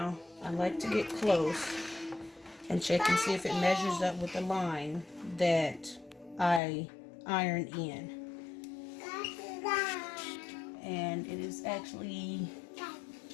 I like to get close and check and see if it measures up with the line that I ironed in. And it is actually,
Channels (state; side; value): drops out; right; at 6.6 s